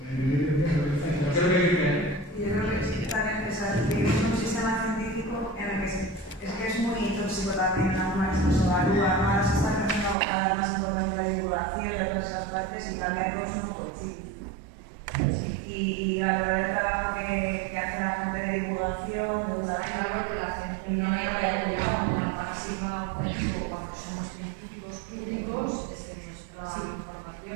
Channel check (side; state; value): left; drops out; at 10.2 s